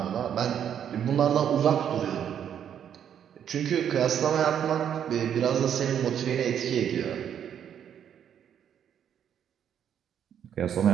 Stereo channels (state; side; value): quieter; left; 9.1 dB